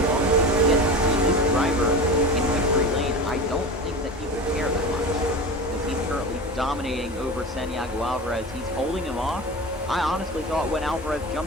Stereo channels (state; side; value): normal; both; correlation 0.29